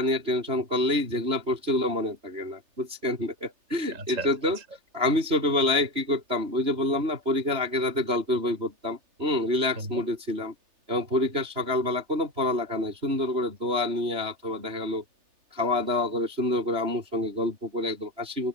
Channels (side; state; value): left; late; 3.3 ms